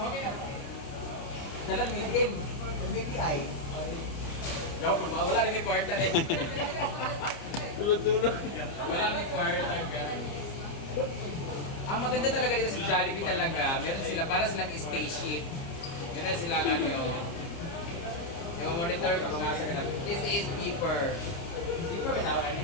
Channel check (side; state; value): right; late; 30 ms